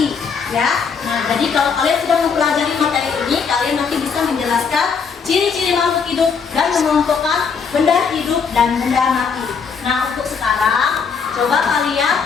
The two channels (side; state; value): right; quieter; 5.9 dB